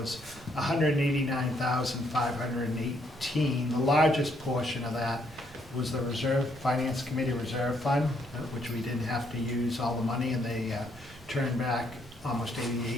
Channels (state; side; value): normal; both; correlation 0.72